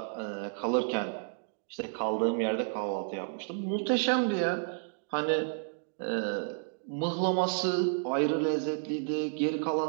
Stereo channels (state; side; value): silent; left; digital silence